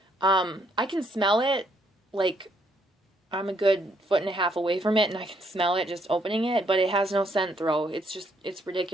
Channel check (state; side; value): normal; both; correlation 0.71